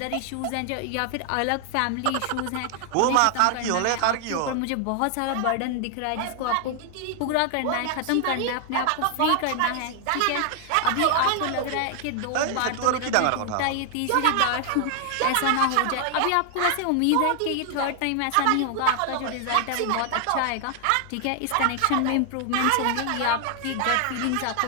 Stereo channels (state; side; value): different; both; correlation 0.00